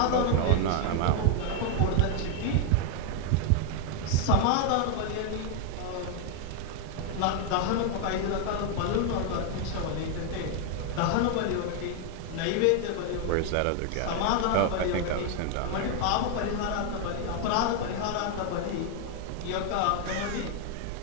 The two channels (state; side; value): different; both; correlation 0.00